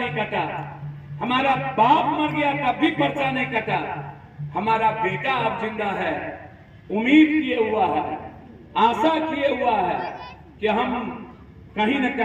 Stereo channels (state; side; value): identical; both; correlation 1.00